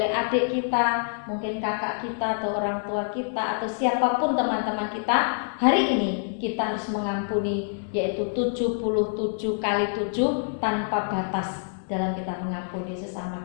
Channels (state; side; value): silent; right; 61 dB below the other